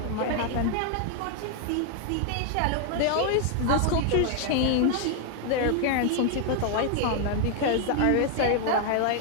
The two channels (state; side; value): different; both; correlation 0.00